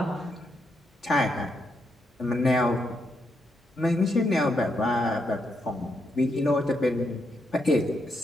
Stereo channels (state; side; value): normal; both; correlation 0.80